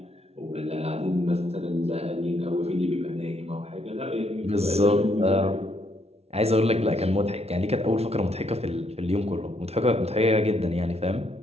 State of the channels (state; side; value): late; left; 0.30 ms